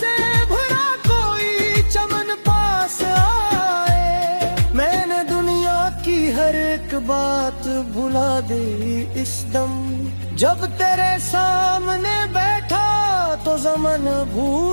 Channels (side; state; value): both; inverted; correlation -1.00